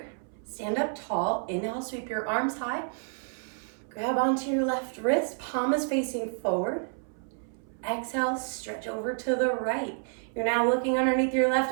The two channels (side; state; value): left; silent; 58 dB below the other